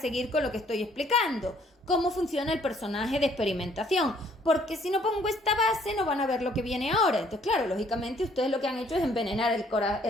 con lo que estoy explicando, cómo funciona el personaje de experimentación, porque si no pongo esta base no van a ver lo que viene ahora. Entonces, claro, lógicamente ustedes lo que han hecho es envenenar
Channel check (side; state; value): both; normal; correlation 0.63